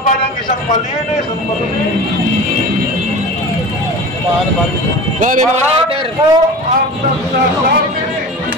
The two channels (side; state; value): both; normal; correlation 0.33